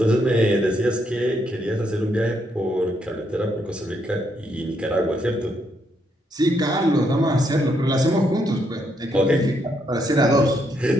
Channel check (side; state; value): both; normal; correlation 0.76